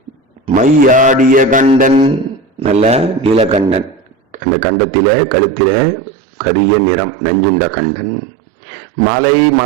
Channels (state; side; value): drops out; left; at 4.4 s